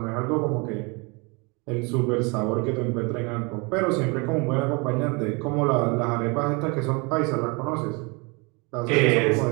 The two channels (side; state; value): left; quieter; 29.3 dB